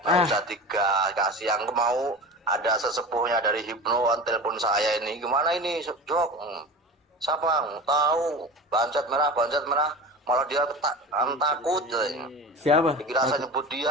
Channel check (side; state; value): both; normal; correlation 0.32